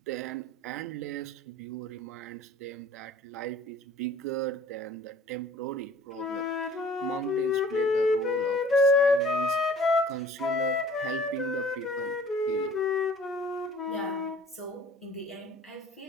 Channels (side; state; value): both; normal; correlation 0.50